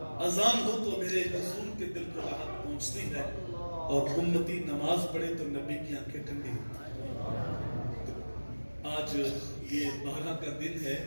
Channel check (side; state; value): both; inverted; correlation -1.00